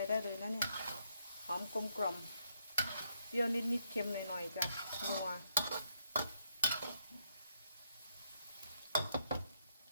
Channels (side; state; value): both; inverted; correlation -0.76